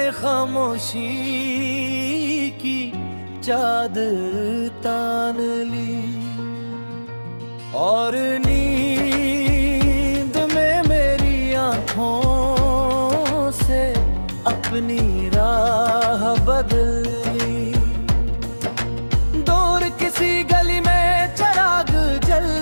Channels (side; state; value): both; inverted; correlation -1.00